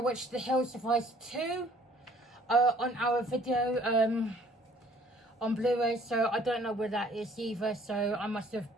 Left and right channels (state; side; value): normal; both; correlation 0.58